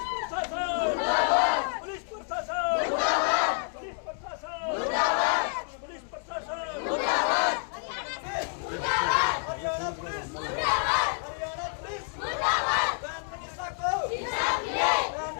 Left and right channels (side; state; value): right; silent; 59 dB below the other